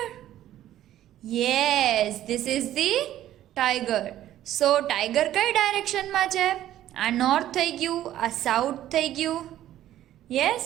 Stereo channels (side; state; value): left; quieter; 12.8 dB